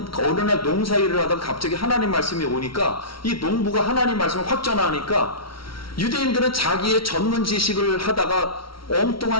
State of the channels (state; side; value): late; right; 0.74 ms